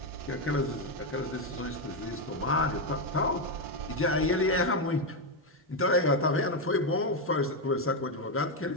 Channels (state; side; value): normal; both; correlation 0.05